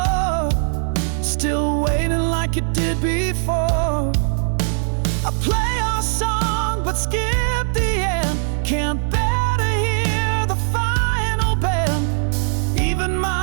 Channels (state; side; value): silent; left; 66 dB below the other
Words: still waiting like it did before. I play our song but skip the end, can't bear to hear the final bend. Even